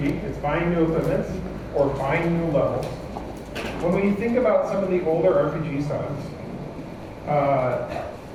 it's buying new equipment or buying new levels. When we think about some of the older RPG styles,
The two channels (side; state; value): both; identical; correlation 1.00